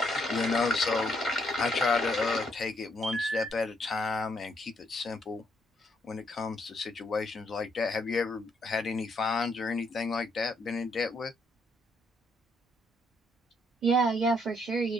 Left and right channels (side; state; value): both; normal; correlation 0.73